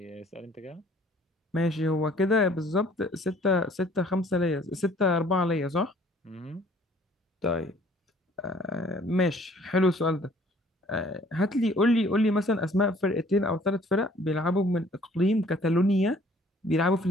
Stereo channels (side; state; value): both; normal; correlation 0.57